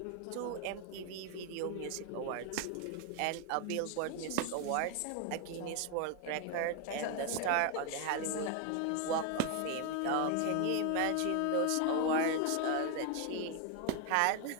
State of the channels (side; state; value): both; different; correlation 0.01